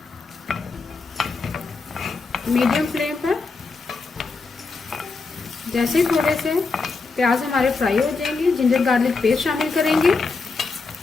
मीडियम फ्लेम पर। जैसे थोड़े से प्याज हमारे फ्राई हो जाएंगे, जिंजर गार्लिक पेस्ट शामिल करेंगे।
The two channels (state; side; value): quieter; right; 4.2 dB